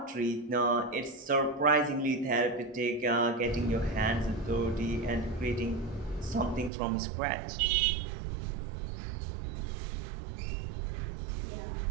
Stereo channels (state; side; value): drops out; left; at 6.7 s